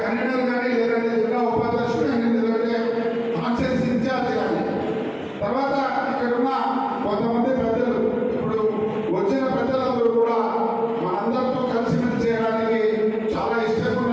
కన్వీనర్ కానీ లేదంటే జిల్లా ఉపాధ్యక్షుడు కానీ లేదంటే కాన్స్టిట్యూన్సీ ఇన్ఛార్జ్ కానీ తర్వాత ఇక్కడ ఉన్న కొంతమంది పెద్దలు ఇప్పుడు వచ్చిన పెద్దలందరూ కూడా మనందరితో కలిసిమెలిసి చేయడానికి చాలా ఇష్టంగా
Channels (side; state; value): both; identical; correlation 1.00